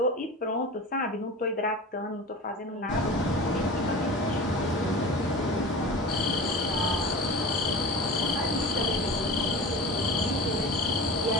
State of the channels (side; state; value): both; normal; correlation 0.34